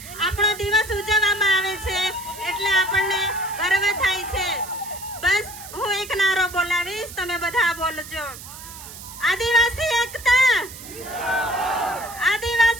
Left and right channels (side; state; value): right; noise; hiss, 14 dB below the sound